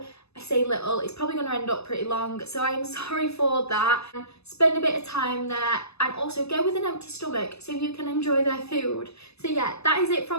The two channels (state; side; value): late; right; 0.79 ms